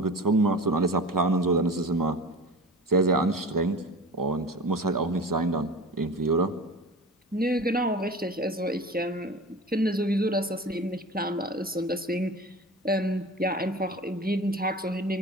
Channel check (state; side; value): normal; both; correlation 0.34